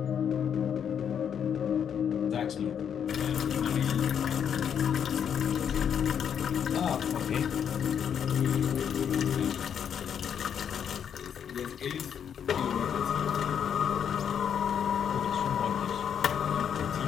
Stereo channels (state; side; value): quieter; right; 8.2 dB